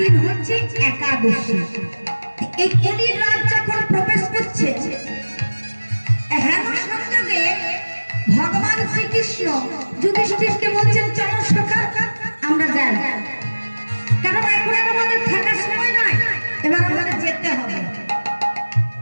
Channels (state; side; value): inverted; both; correlation -1.00